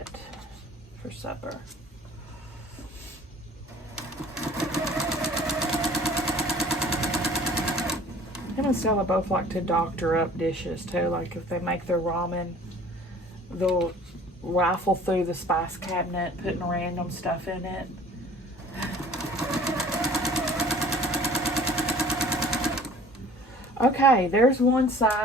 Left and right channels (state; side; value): normal; both; correlation 0.49